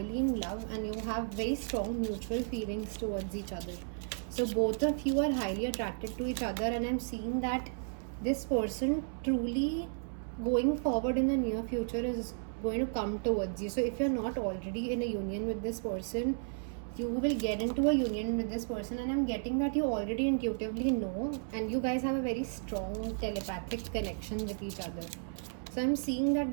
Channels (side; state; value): left; silent; 55 dB below the other